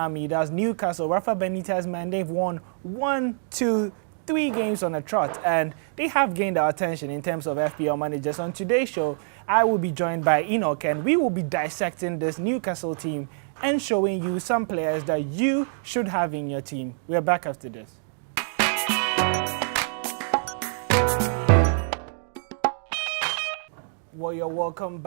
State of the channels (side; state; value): left; silent; digital silence